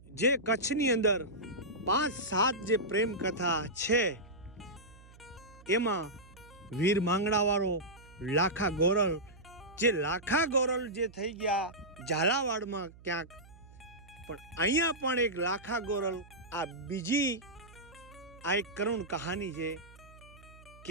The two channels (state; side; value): noise; right; hum, 22 dB below the sound